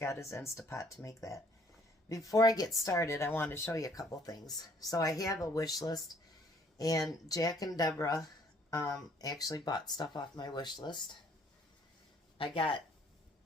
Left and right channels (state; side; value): normal; both; correlation 0.61